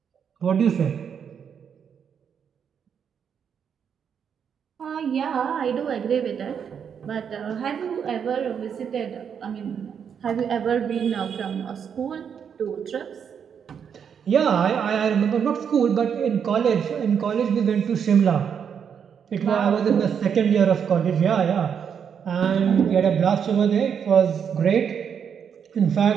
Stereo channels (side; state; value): left; quieter; 7.5 dB